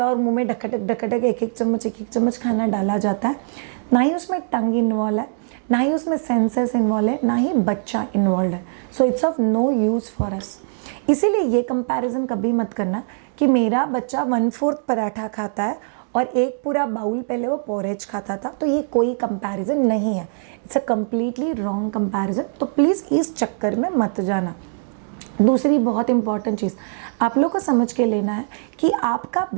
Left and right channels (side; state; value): left; silent; digital silence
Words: है और मुंह में ढकटक ढकटक एक एक चम्मच खाना डाला जाता है, ना ही उसमें टंग इन्वॉल्व है, ना ही उसमें सेंसेस इन्वॉल्व है, ना ही बच्चा इन्वॉल्व है। So it's of no use for us. इसीलिए ये कंपैरिजन कभी मत करना कि मेरा बच्चा 1/4 पराठा खाता है और एक पूरा बाउल पहले वो पोरेज खाता था, तो ये कोई कंपैरिजन नहीं है। It's a completely wrong comparison. तो प्लीज़ इस चक्कर में मत जाना। दूसरी बहुत इंपॉर्टेंट चीज़ आप लोग को समझ के लेना है कि आपका